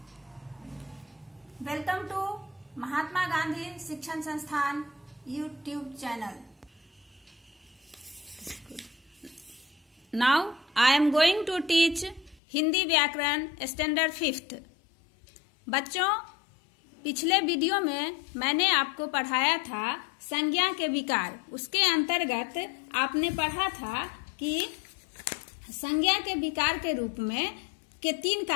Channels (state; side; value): drops out; right; at 12.4 s